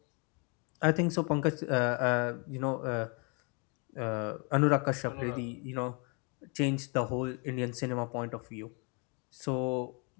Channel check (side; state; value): right; quieter; 34.3 dB